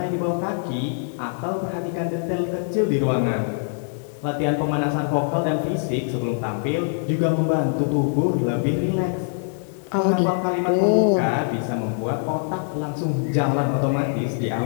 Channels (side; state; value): right; silent; 63 dB below the other